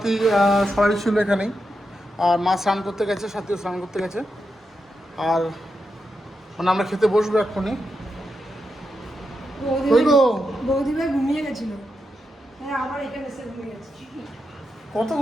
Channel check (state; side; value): normal; both; correlation 0.86